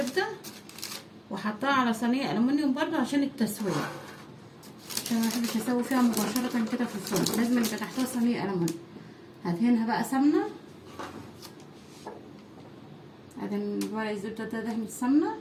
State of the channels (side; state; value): both; identical; correlation 1.00